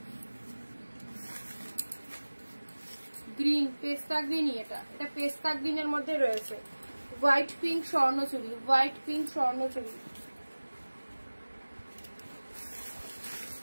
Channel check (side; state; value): both; inverted; correlation -1.00